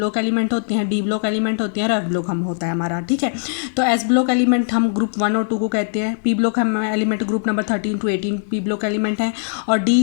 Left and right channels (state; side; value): silent; right; digital silence